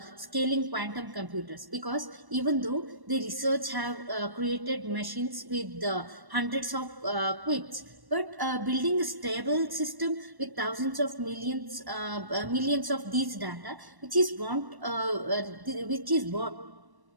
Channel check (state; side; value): late; left; 1.1 ms